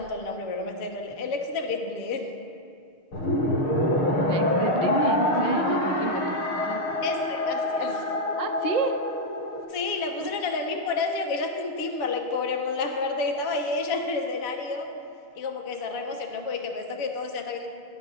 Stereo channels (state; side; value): late; right; 6.4 ms